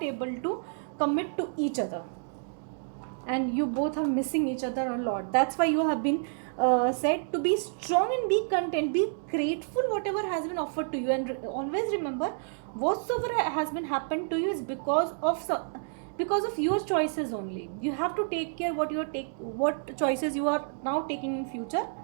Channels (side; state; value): left; silent; digital silence